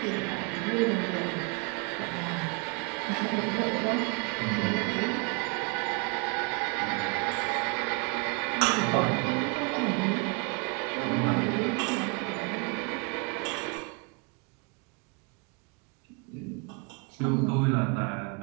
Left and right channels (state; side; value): quieter; left; 31.7 dB